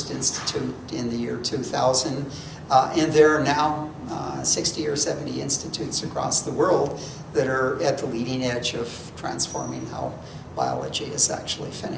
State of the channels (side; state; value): both; identical; correlation 1.00